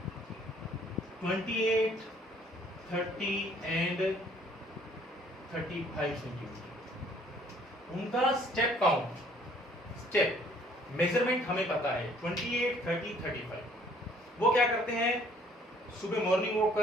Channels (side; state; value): both; normal; correlation 0.60